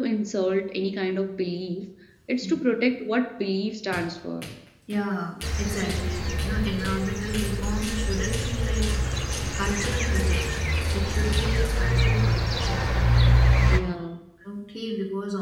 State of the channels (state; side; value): identical; both; correlation 1.00